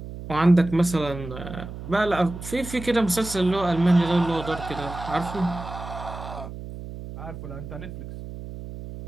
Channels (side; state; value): right; noise; hum, 11 dB below the sound